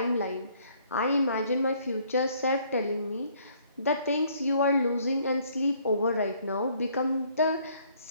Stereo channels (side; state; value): both; inverted; correlation -0.63